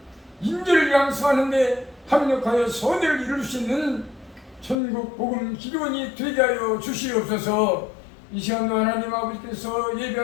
인재를 양성하는 데 합력하여 선을 이룰 수 있는 천국 복음 기도원이 되게 하여 주시옵소서. 이 시간도 하나님 아버지께서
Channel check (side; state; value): right; drops out; at 4.8 s